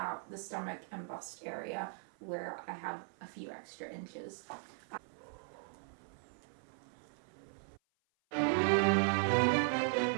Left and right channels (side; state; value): left; silent; 52 dB below the other